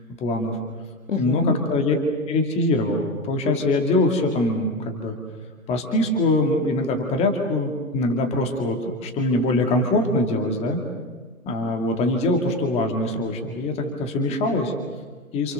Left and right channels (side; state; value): both; normal; correlation 0.22